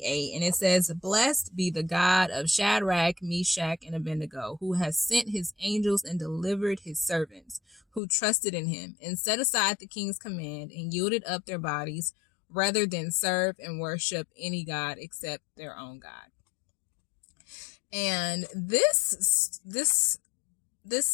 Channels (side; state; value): right; drops out; at 8.0 s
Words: and it says, "Blessed be the God of Shadrach, Meshach, and Abednego, who has sent his angels and delivered his servants, who trusted in him and set aside the king's command and yielded up their bodies rather than serve and worship any God except their own God." And this